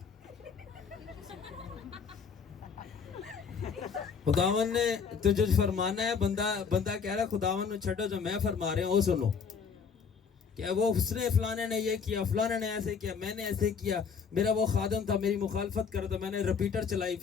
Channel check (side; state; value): right; quieter; 6.1 dB